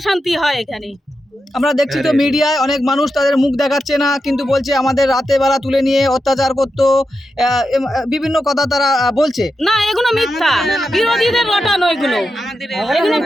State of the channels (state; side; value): normal; both; correlation 0.88